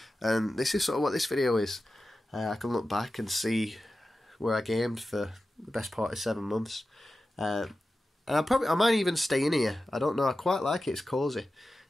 And this is sort of what this video is. I can look back and see where I gamed for the best part of 7 months. And I might even stay in here. I don't know. I quite like it. It's cosy.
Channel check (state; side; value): normal; both; correlation 0.93